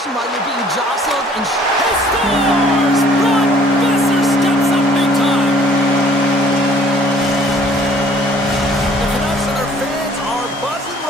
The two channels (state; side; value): normal; both; correlation 0.57